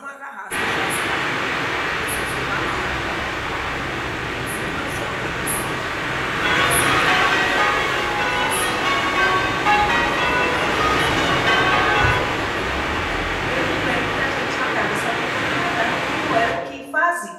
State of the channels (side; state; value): both; identical; correlation 1.00